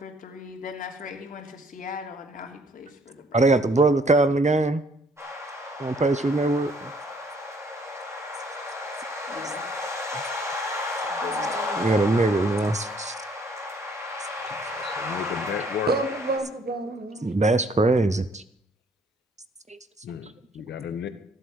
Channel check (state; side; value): normal; both; correlation 0.63